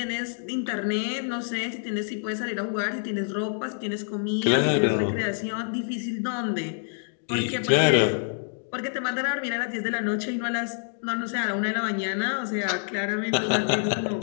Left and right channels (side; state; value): right; silent; digital silence